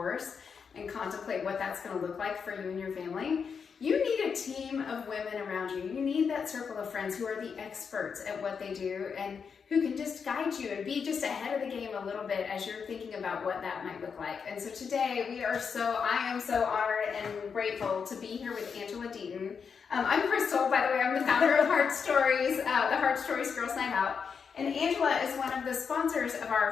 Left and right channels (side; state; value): right; quieter; 6.2 dB